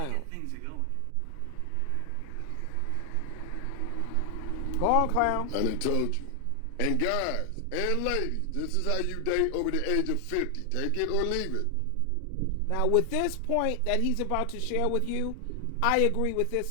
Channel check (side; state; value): both; different; correlation 0.00